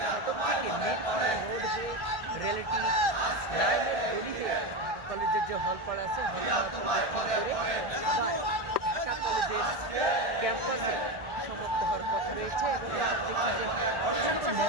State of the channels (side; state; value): left; late; 1.4 ms